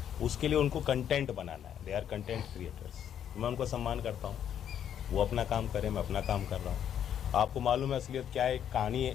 उसके लिए उनको कंटेंट बनाना है। They are content creators. मैं उनको सम्मान करता हूँ, वो अपना काम करें, मैं अपना काम कर रहा हूँ। आपको मालूम है असलियत क्या है? एक कहानी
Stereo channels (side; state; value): right; quieter; 9.5 dB